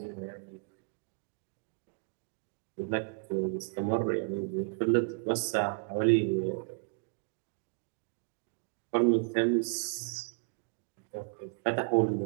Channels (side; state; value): left; quieter; 39.0 dB